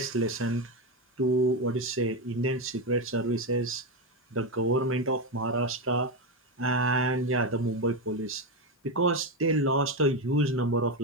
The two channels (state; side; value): normal; both; correlation 0.11